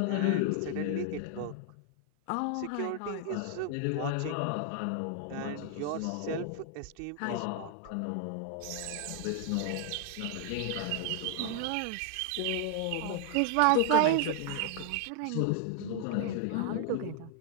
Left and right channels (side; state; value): both; different; correlation 0.00